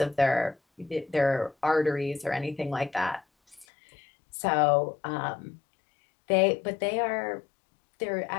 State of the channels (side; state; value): right; drops out; at 3.7 s